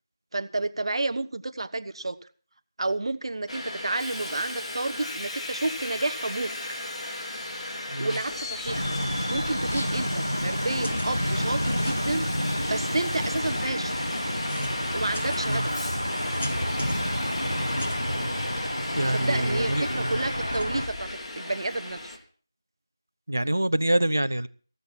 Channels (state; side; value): inverted; both; correlation -0.87